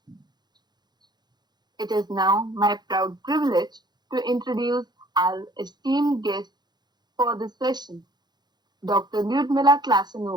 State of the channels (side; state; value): left; late; 0.21 ms